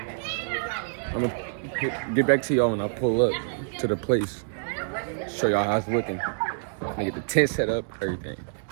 I'm gonna get back to y'all when I pull up to the place. Show y'all how it's looking. I'm gonna get the tent set up,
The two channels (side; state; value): left; silent; digital silence